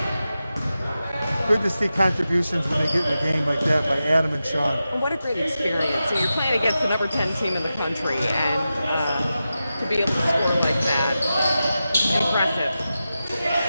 good to see contributions when they get in the game like that by Adam and Sean. And what a great experience. So you're playing against the number 10 team in the country, and to be able to score like that, impressive.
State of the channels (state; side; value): inverted; both; correlation -0.92